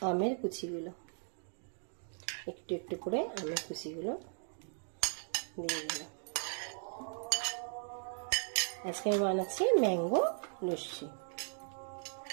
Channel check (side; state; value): left; silent; 53 dB below the other